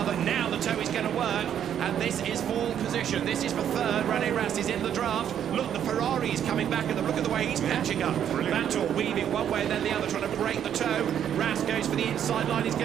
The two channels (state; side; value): quieter; left; 9.5 dB